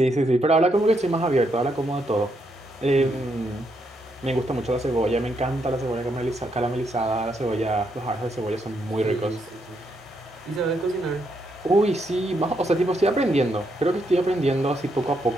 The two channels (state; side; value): normal; both; correlation 0.78